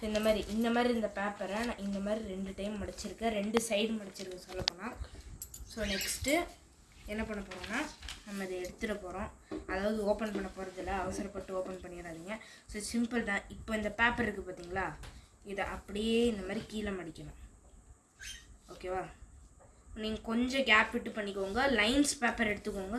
இந்த மாதிரி இந்த பேப்பரை நான் இந்த மாதிரி 2 டைம் மடிச்சிருக்கேன். 2 சைடு மடிச்சிருக்கேன் சொல்லப்போனால். ஸோ நெக்ஸ்ட்டு என்ன பண்ண போகிறோம்னா நம்ம இதை எடுத்துகிட போகிறோம். அதாவது ஓப்பன் பண்ண போகிறதில்ல, அவசரப்பட்டு ஓப்பன் பண்ணிடாதீங்க. ஸோ சிம்பிள் தான். இப்போ இந்த பேப்பர் இருக்குது பார்த்தீங்களா, இதை அப்படியே இந்த மாதிரி கீழே மடிக்கணும். ஓகேவா? நீங்கள் கொஞ்சம் கேப் விட்டு பண்ணிக்கோங்க. லைன்ஸ் பேப்பர் எடுத்துக்கோங்க.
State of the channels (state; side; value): identical; both; correlation 1.00